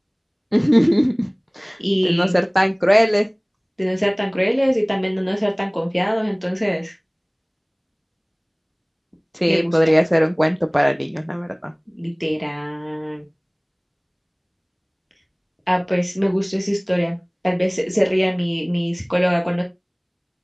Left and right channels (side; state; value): both; identical; correlation 1.00